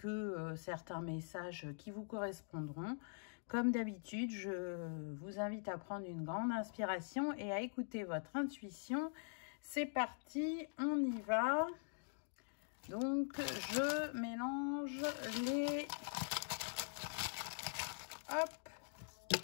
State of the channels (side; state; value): right; silent; digital silence